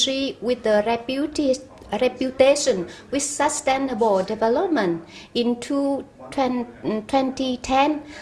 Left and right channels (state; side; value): identical; both; correlation 1.00